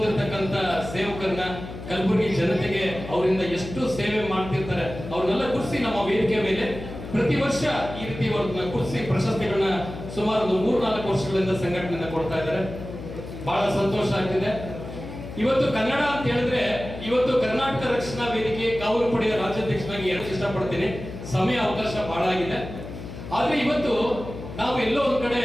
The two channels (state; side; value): noise; left; hum, 11 dB below the sound